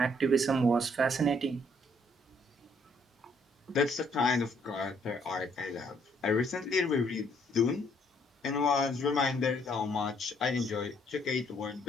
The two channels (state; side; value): normal; both; correlation 0.67